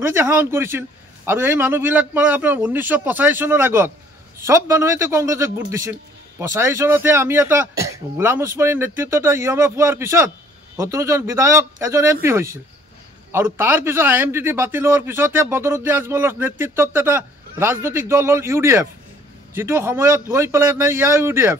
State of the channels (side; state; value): both; normal; correlation 0.57